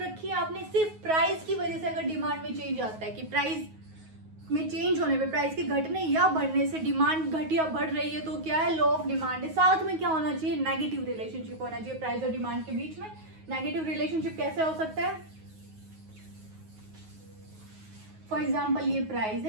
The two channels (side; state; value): left; late; 9.4 ms